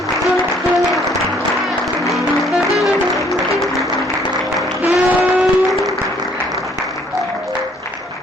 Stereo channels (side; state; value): both; normal; correlation 0.62